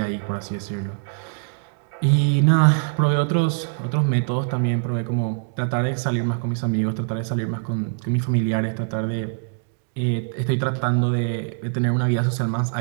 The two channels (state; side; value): silent; left; digital silence